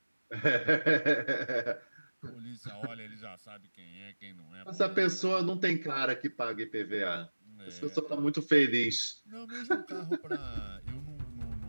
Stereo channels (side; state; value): both; inverted; correlation -1.00